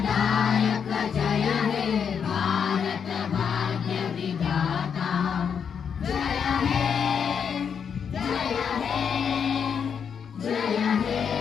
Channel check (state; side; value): quieter; right; 7.1 dB